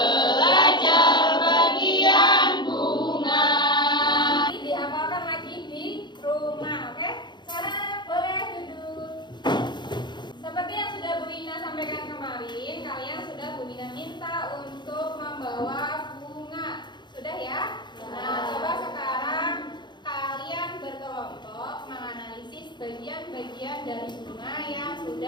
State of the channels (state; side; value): late; right; 0.22 ms